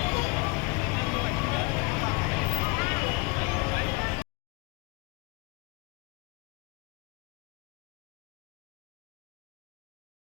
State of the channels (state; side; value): quieter; right; 26.9 dB